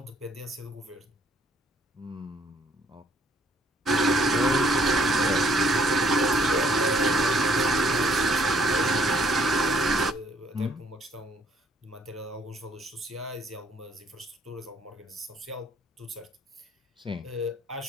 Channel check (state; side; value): normal; both; correlation 0.63